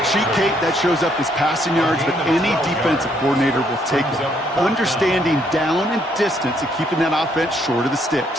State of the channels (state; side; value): normal; both; correlation 0.70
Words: sheet, Kate, that shows up as passing yards, but any defensive coordinator will take it. Understanding down and distance and keeping that offense short of the